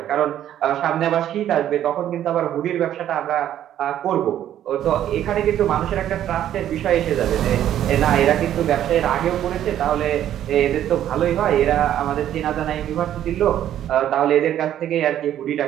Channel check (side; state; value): left; quieter; 11.3 dB